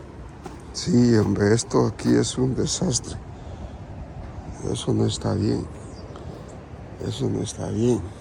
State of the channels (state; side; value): identical; both; correlation 1.00